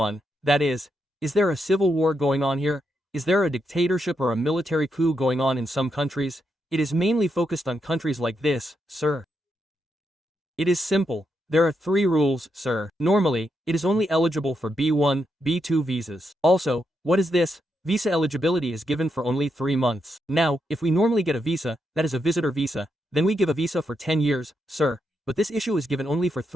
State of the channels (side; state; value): both; normal; correlation 0.82